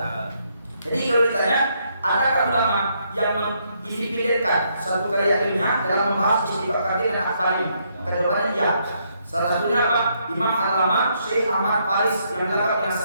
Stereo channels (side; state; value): both; inverted; correlation -0.74